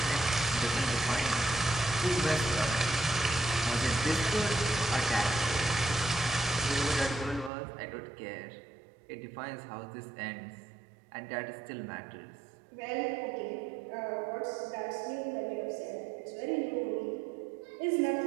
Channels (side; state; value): left; drops out; at 7.5 s